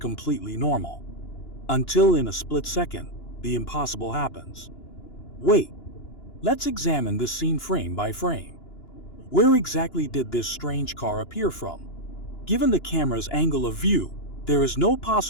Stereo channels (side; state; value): right; late; 2.9 ms